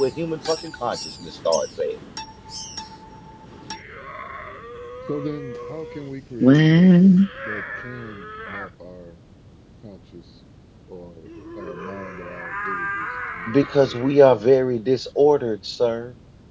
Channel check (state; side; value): identical; both; correlation 1.00